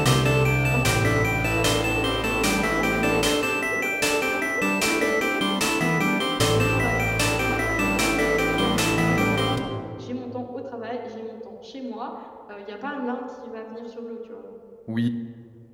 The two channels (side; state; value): both; identical; correlation 1.00